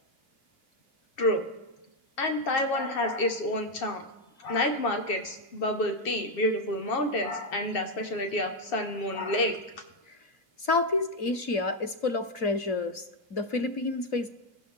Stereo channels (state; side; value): late; right; 2.7 ms